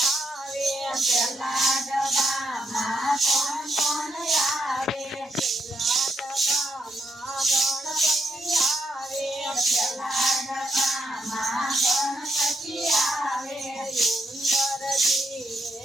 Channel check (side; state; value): both; normal; correlation 0.79